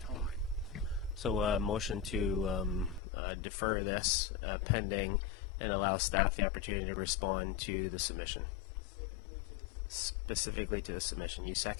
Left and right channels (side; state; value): right; drops out; at 3.0 s